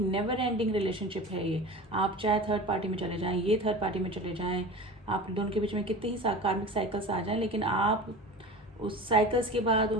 एंडिंग रिलेशनशिप है ये। आप चाहे थर्ड पार्टी में चले जाएं, ये थर्ड पार्टी में चले जाएं, आप दोनों के बीच में कितने ही कार्मिक साइकिल्स आ जाएं, लेकिन आप उस साइकिल्स के बाद,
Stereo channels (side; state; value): both; normal; correlation 0.34